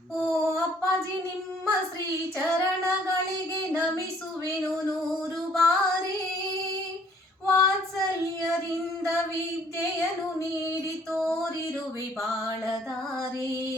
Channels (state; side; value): normal; both; correlation 0.61